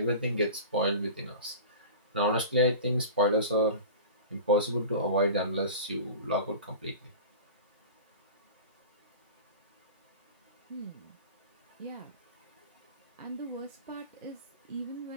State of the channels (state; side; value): inverted; both; correlation -0.35